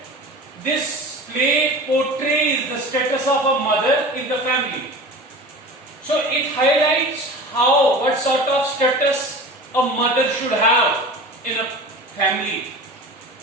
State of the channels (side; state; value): both; normal; correlation 0.36